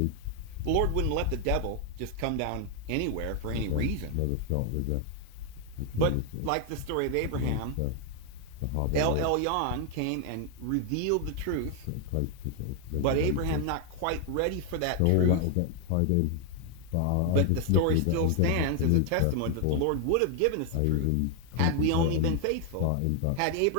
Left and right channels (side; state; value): both; different; correlation 0.01